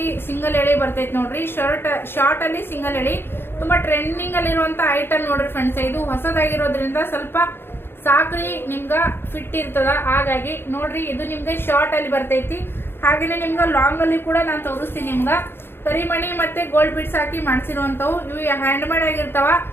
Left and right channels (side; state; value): right; late; 0.11 ms